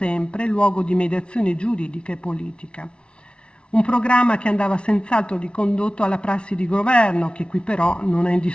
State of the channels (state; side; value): late; right; 0.057 ms